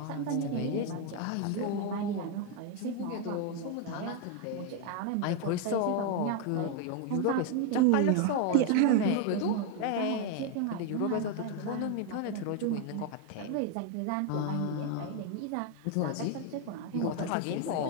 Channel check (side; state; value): both; different; correlation 0.01